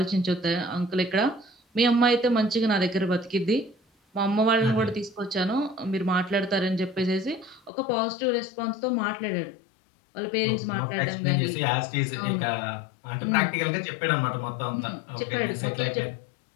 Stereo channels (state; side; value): drops out; right; at 7.7 s